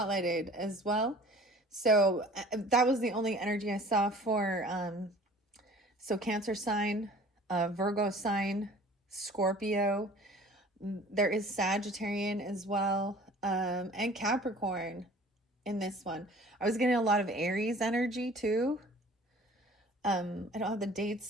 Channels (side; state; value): both; normal; correlation 0.48